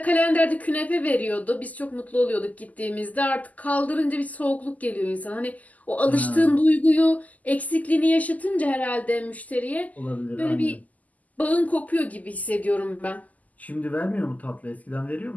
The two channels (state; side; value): late; right; 0.077 ms